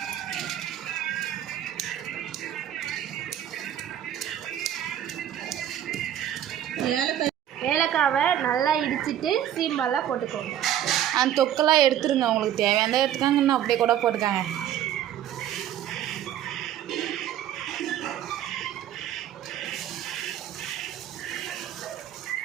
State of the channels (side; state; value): left; quieter; 11.1 dB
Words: ஏலக்காவை நல்லா இடிச்சிட்டு சீம்பாலாக போட்டுக்கோங்க. அந்த தொக்கெல்லாம் எடுத்துருங்க. உங்களுக்கு தேவையான எடுத்துக்காங்கன்னு அப்படியே கூட போட்டுக்காங்க.